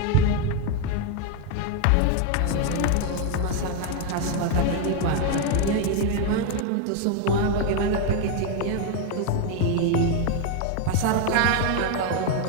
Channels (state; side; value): different; both; correlation 0.01